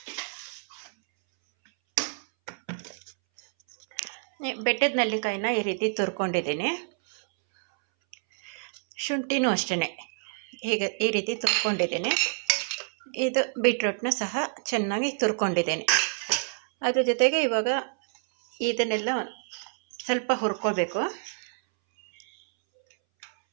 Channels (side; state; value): left; silent; 60 dB below the other